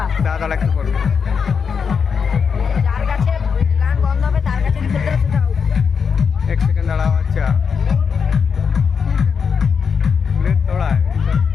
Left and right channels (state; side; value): quieter; right; 6.2 dB